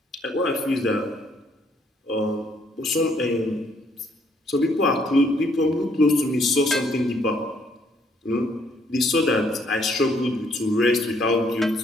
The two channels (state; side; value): normal; both; correlation 0.68